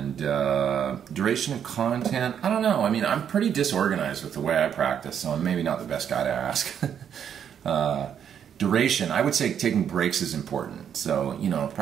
duration of content, I don't know. I mean, I'm pretty disorganized with the way I practice, so I'm maybe not the best guy to ask. Duration, I would say taking breaks is important. So,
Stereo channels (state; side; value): quieter; left; 8.6 dB